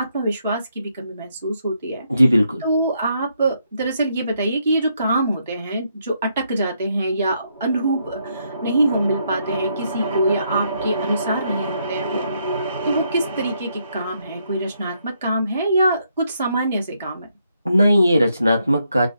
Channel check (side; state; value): both; inverted; correlation -0.76